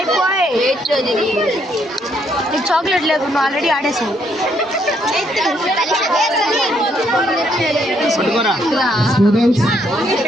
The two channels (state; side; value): normal; both; correlation 0.72